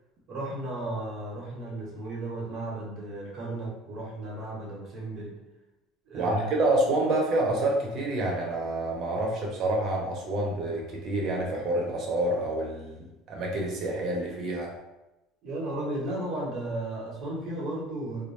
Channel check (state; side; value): normal; both; correlation 0.47